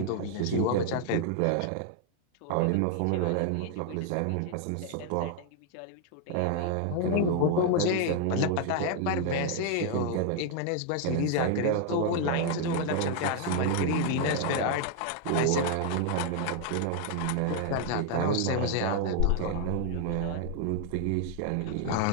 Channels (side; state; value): both; different; correlation 0.00